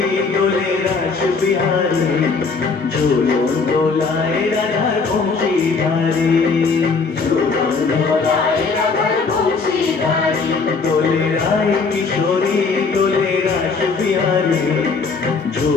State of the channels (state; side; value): quieter; right; 4.6 dB